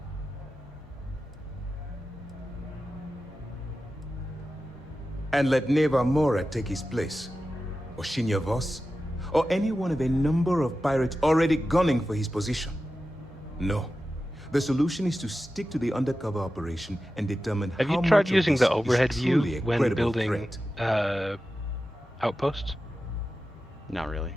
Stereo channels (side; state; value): both; normal; correlation 0.93